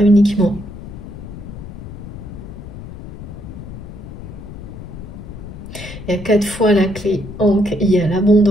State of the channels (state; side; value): noise; left; rumble, 12 dB below the sound